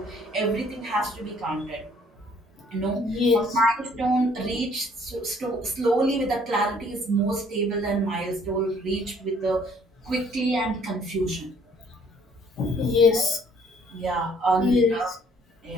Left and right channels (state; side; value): normal; both; correlation 0.60